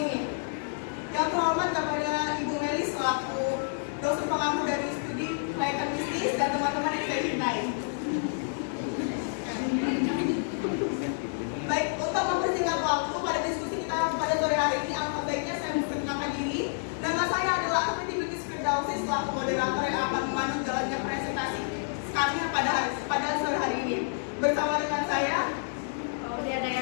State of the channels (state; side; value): silent; right; digital silence